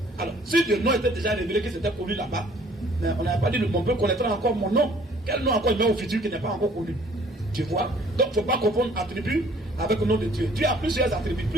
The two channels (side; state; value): both; normal; correlation 0.57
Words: Alors, si le nom était déjà révélé, que c'était connu là-bas, mais on n'avait pas dit mon peuple connaîtra encore mon nom. Quel nom encore il met au futur qui n'est pas encore connu? Tu vois? Donc, il ne faut pas confondre attribut avec le nom de Dieu. Dieu a plusieurs attributs,